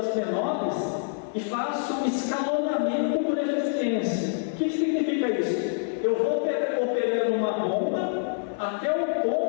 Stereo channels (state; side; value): silent; right; digital silence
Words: menores e faço escalonamento por eficiência. O que significa isso? Eu vou operando uma bomba até o